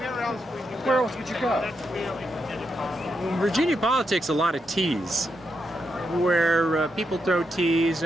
where else would you go? In Virginia politics, a lot of teas, where people throw teas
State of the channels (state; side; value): normal; both; correlation 0.83